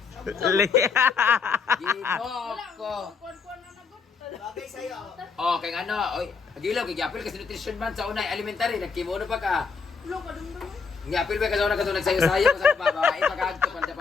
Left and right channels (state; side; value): quieter; right; 5.3 dB